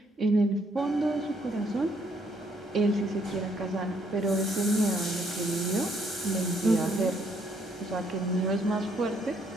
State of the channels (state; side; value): normal; both; correlation 0.69